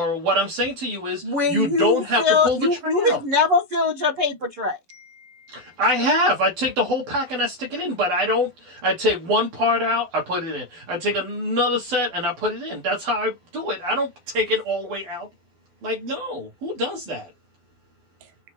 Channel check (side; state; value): left; late; 12 ms